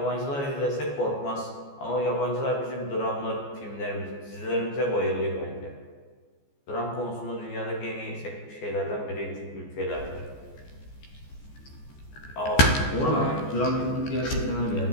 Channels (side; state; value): right; late; 14 ms